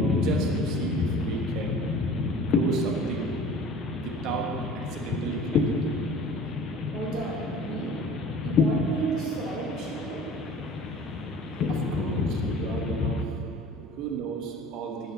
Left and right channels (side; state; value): both; normal; correlation 0.45